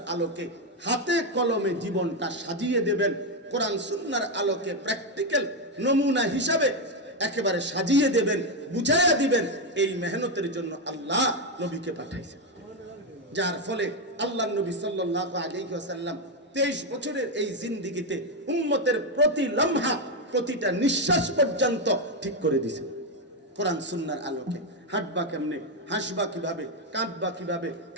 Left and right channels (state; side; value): normal; both; correlation 0.05